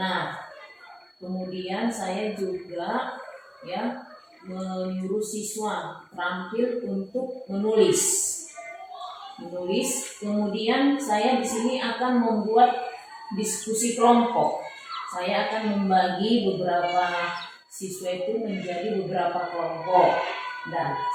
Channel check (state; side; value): identical; both; correlation 1.00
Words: Kemudian saya juga menyuruh siswa terampil untuk menulis. Kemudian saya di sini akan membuat diskusi kelompok. Saya akan membagi beberapa siswa itu menjadi beberapa kelompok. Dan